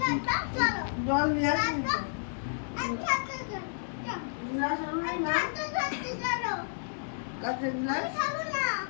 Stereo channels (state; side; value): silent; right; digital silence